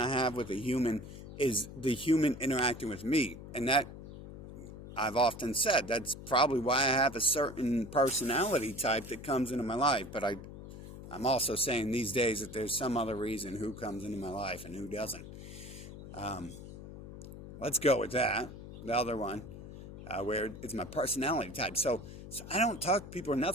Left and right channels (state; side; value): noise; left; hum, 13 dB below the sound